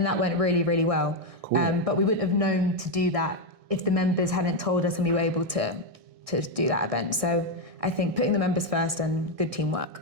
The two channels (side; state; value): left; late; 1.6 ms